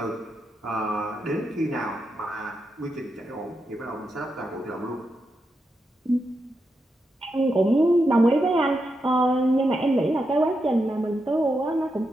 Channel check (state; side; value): normal; both; correlation 0.85